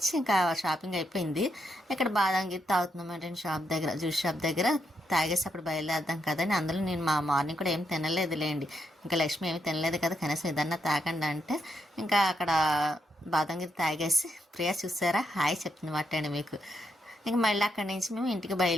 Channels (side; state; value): both; normal; correlation 0.80